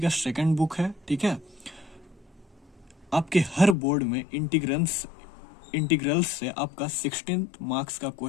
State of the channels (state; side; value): drops out; right; at 3.8 s